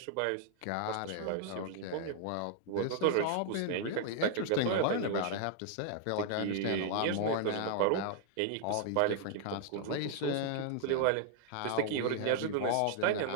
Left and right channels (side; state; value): both; different; correlation -0.01